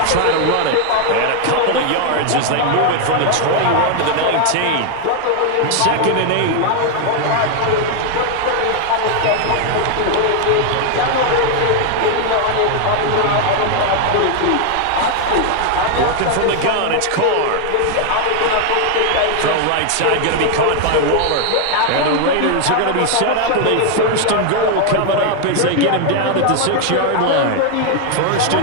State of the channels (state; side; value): different; both; correlation 0.00